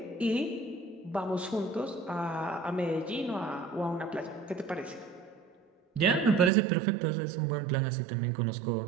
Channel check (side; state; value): left; drops out; at 6.5 s